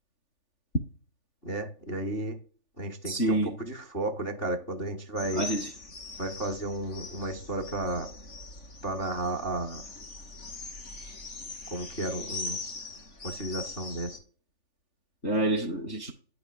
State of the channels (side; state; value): right; late; 3.4 ms